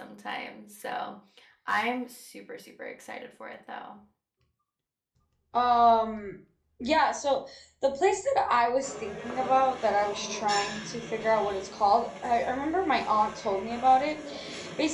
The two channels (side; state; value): both; identical; correlation 1.00